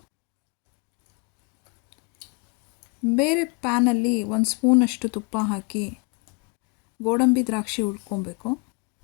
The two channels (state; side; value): quieter; right; 31.4 dB